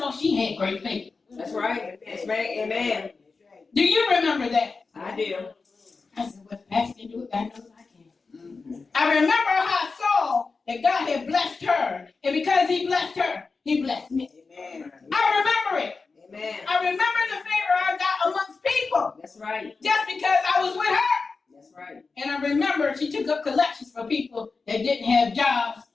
she had great faith. That's right. That's right. Amen. Do you remember that? I do. I said, well, Pastor can do it, God knows I can. I remember how I saw that God had blessed her. And because he blessed her, he blessed me. Amen. I remember it. Amen. I remember the favor I got amongst people. That's right. Just because I was with her. That's right. And I remember she took up collections for people that didn't have jobs,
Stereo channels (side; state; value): right; quieter; 4.4 dB